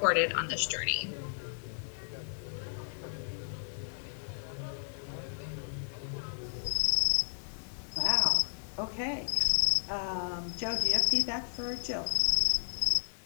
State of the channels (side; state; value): right; silent; digital silence